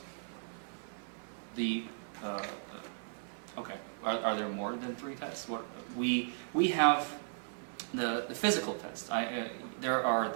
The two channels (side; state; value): left; silent; 54 dB below the other